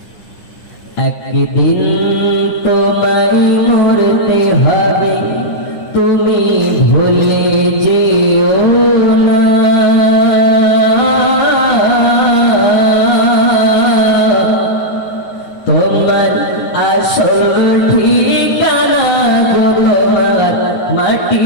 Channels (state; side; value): late; right; 9.7 ms